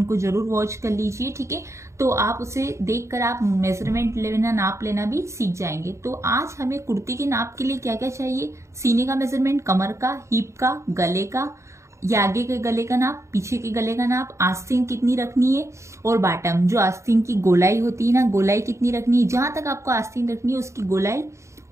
जरूर वॉच कर लीजिए, ठीक है। तो आप उसे देखकर आप मेजरमेंट लेना, नाप लेना भी सीख जाएंगे। तो आज हमें कुर्ती के नाप के लिए क्या क्या चाहिए, सीने का मेजरमेंट, कमर का, हिप का, गले का, या आगे के गले का नाप, पीछे के गले का नाप, आस्तीन कितनी रखनी है और बॉटम जो आस्तीन की गोलाई होती है ना, गोलाई कितनी रखनी है, जहां तक आपको आस्तीन रखनी है उसकी गोलाई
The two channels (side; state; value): left; late; 0.14 ms